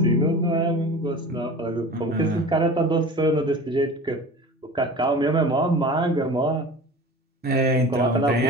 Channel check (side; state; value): both; normal; correlation 0.37